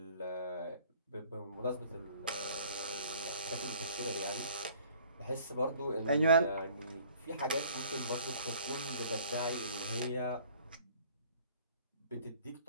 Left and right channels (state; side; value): inverted; both; correlation -0.54